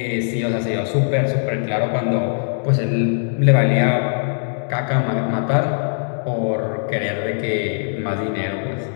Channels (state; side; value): silent; right; digital silence